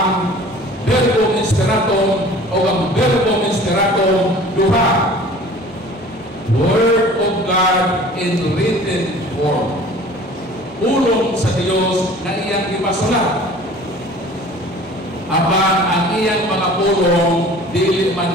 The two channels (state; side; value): normal; both; correlation 0.46